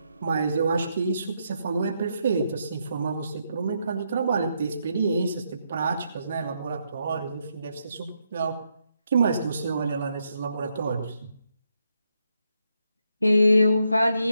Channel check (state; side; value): inverted; both; correlation -0.80